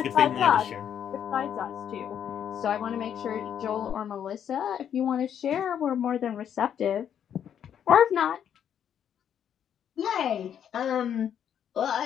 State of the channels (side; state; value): right; quieter; 9.0 dB